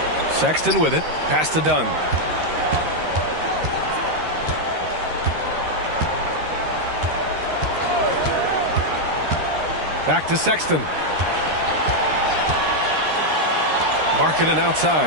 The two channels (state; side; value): late; left; 13 ms